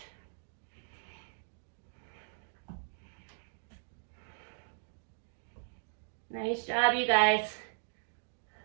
Nice job, you guys.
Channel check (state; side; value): silent; left; digital silence